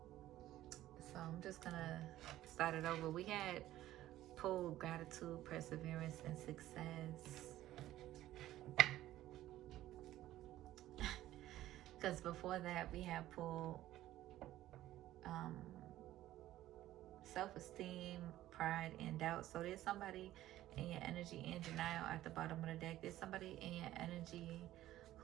so I'm just gonna start it over. We had pulled gratitude, perseverance, and success. Because before that, we have pulled um, self-esteem, pride, and doubt. So there's somebody in your energy in denial at the bottom of the deck. There's somebody in your energy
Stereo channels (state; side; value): quieter; left; 14.4 dB